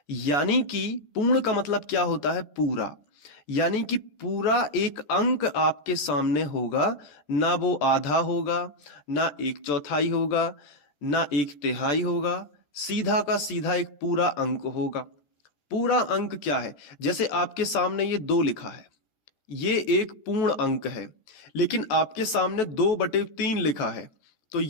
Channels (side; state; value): right; late; 14 ms